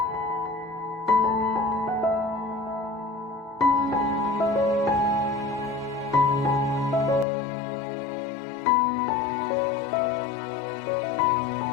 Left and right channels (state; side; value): drops out; right; at 7.2 s